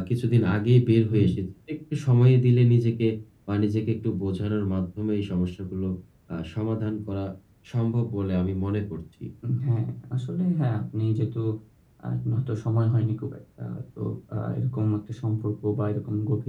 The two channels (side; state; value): both; identical; correlation 1.00